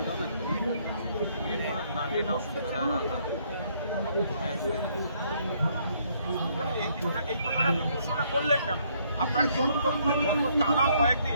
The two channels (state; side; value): inverted; both; correlation -0.68